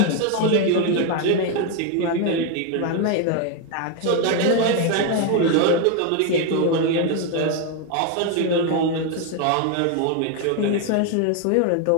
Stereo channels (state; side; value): different; both; correlation 0.01